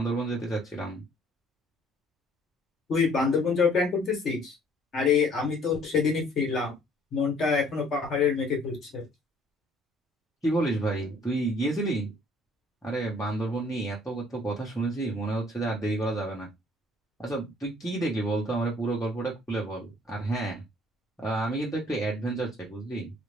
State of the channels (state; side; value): normal; both; correlation 0.59